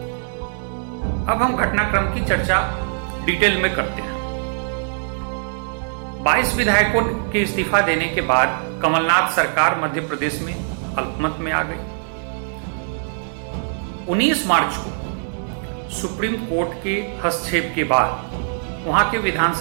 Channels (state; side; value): silent; left; digital silence